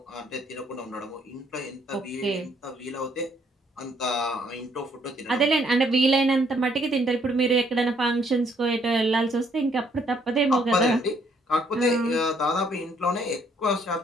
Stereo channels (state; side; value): normal; both; correlation 0.68